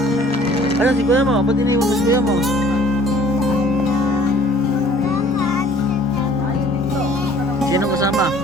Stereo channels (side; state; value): both; normal; correlation 0.54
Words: Ano si kuya mo? Ba't iniwan mo si kuya mo? Sino kasama?